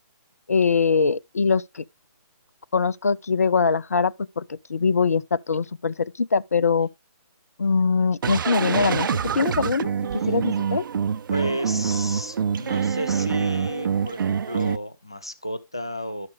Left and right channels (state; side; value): inverted; both; correlation -0.66